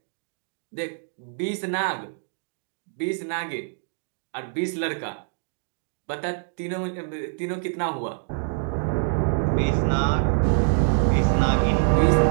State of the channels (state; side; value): silent; left; digital silence